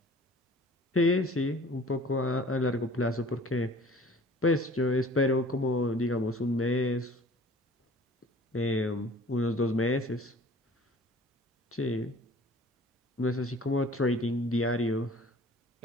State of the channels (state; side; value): normal; both; correlation 0.49